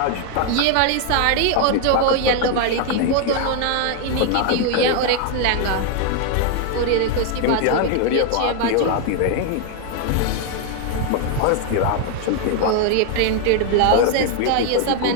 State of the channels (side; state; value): both; different; correlation 0.00